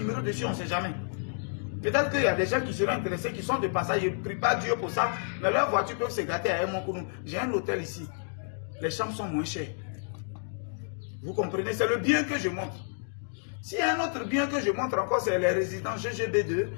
dessus, on ne sait jamais. Peut-être qu'il y a des gens qui seront intéressés, qui sont de passage. Je ne prie pas Dieu pour ça. Mais leurs voitures peuvent se gâter à Hermonkono. J'ai un hôtel ici. Les chambres sont moins chères. Vous comprenez? C'est le bien que je montre. S'il y a un autre bien que je montre encore, c'est les résidences GGB2,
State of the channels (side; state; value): right; silent; digital silence